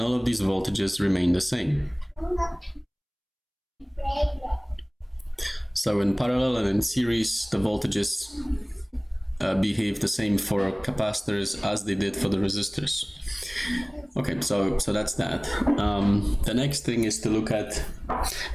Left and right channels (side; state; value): both; identical; correlation 1.00